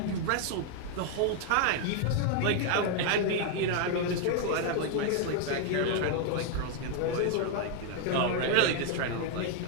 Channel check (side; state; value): both; different; correlation 0.00